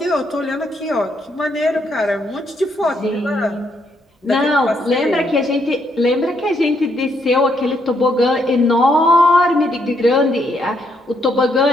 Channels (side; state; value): both; normal; correlation 0.74